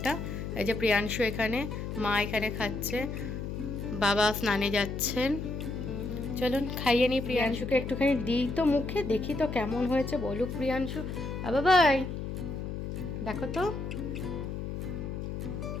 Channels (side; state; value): left; noise; hum, 5 dB below the sound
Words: এই যে প্রিয়াংশু এখানে, মা এখানে খাচ্ছে, বাবা স্নানে যাচ্ছেন। চলুন খাইয়ে নিই প্রিয়াংশুকে, একটুখানি দিই তো মুখে, দেখি তো কেমন হয়েছে, বলুক প্রিয়াংশু। বাবাই দেখো তো